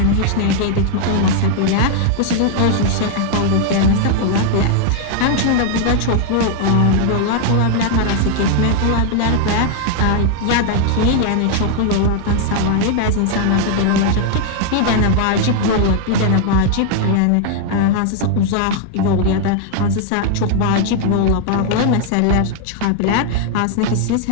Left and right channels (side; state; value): both; different; correlation 0.00